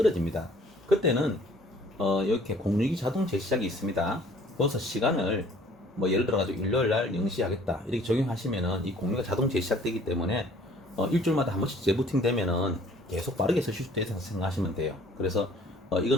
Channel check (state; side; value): normal; both; correlation 0.55